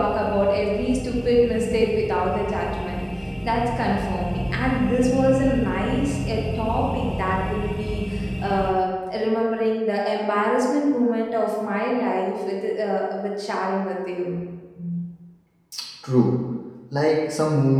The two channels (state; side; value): identical; both; correlation 1.00